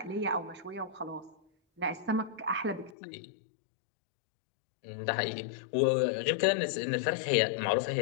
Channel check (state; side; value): drops out; right; at 3.0 s